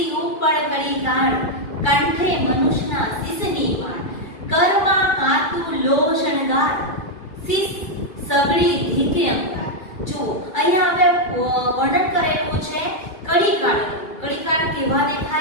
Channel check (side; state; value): right; late; 2.3 ms